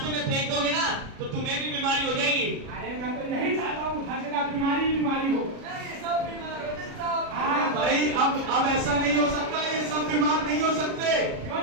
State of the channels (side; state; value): left; late; 37 ms